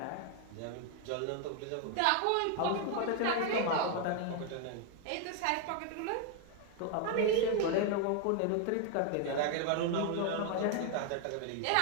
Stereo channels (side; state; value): both; different; correlation 0.01